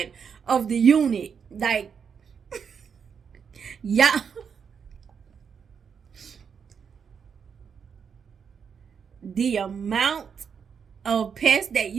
of the unit. Like, yeah. The amount of pests that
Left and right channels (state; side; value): quieter; left; 6.7 dB